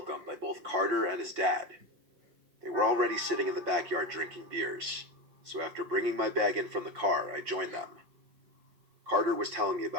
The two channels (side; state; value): left; late; 5.6 ms